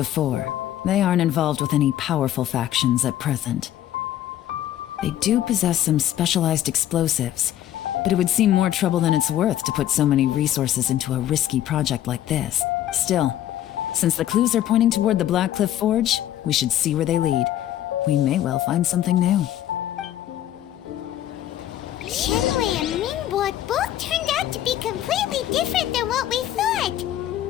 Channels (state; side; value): quieter; right; 12.2 dB